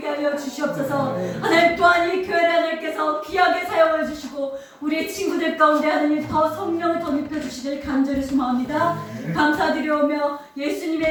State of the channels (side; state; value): both; identical; correlation 1.00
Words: 하여 주시옵소서. 하나님 또한 이 교회를 하나님께서 귀하게 사용해 주시고 우리 친구들 가운데 하나님 더 성령을 더 입혀주시길 간절히 소망합니다. 감사드리오며